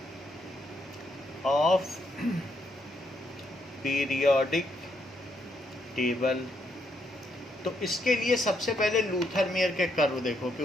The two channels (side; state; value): both; normal; correlation 0.76